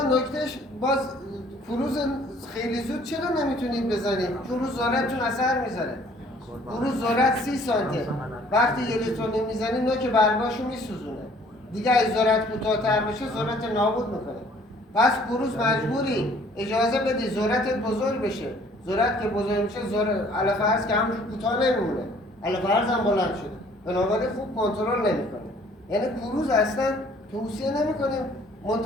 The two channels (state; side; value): normal; both; correlation 0.57